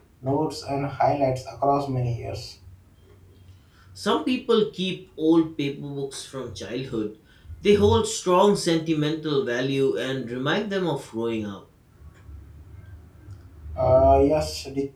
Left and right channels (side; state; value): both; identical; correlation 1.00